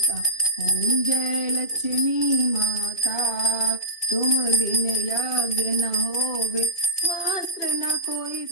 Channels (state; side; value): late; right; 2.5 ms